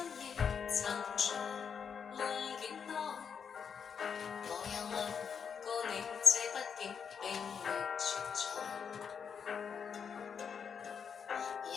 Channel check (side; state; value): right; quieter; 6.8 dB